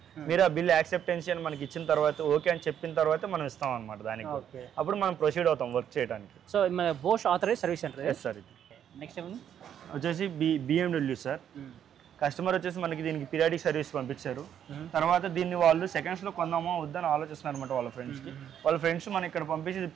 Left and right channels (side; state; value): left; quieter; 9.4 dB